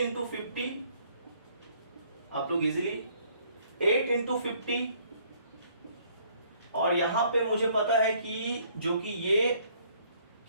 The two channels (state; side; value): inverted; both; correlation -0.63